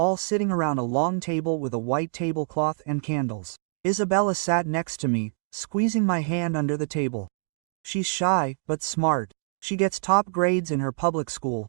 sitting around a long table with a white tablecloth and candles. Isabella sat next to me, squeezing my hand under the table. She's shy, but smart. She gets top grades in her public school,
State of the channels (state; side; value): silent; left; digital silence